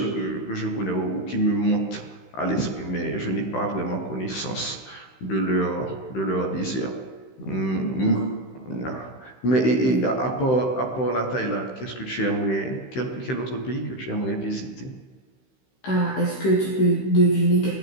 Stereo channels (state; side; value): late; right; 16 ms